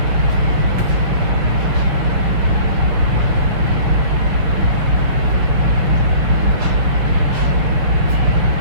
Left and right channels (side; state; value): left; late; 6.0 ms